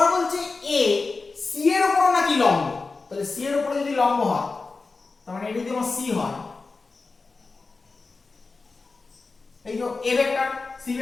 বলছে a c এর উপর নাকি লম্ব। তাহলে c এর উপরে যদি লম্ব হয়, তার মানে এটা যদি আমার c হয়, এই যে a ভেক্টর c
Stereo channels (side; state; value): right; quieter; 4.0 dB